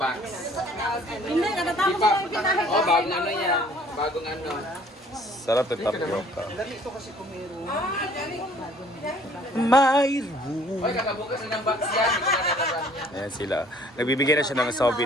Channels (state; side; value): normal; both; correlation 0.56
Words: Hindi, natatapos ko lang pinahit. Oh, bagong ano yan. Bagong ano. Sarap yung tapioca. Lami ito kasi kung meron. My room. Oy, kakabukas lang ng box yan. Hindi ko na nalaman yan. Ayan sila. Nagbibigay na siya ng